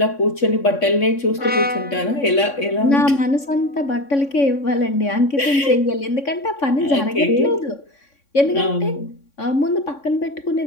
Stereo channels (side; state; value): right; late; 3.6 ms